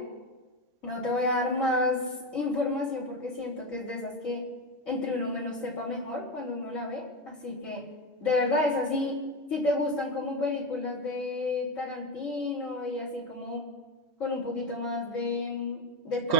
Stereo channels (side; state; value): both; normal; correlation 0.16